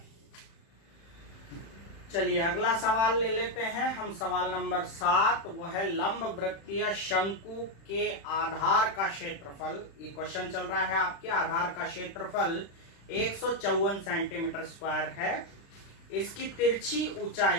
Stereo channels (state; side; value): late; right; 36 ms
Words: चलिए अगला सवाल ले लेते हैं हम। सवाल नंबर 7, वो है लंब वृत्तीय शंकु के आधार का क्षेत्रफल। ये क्वेश्चन चल रहा है आपके। आधार का क्षेत्रफल 154 सेंटीमीटर स्क्वायर है। इसकी तिरछी